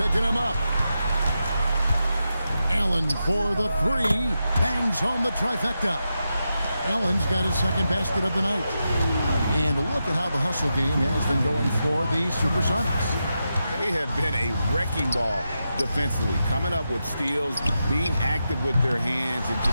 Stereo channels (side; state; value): both; inverted; correlation -0.88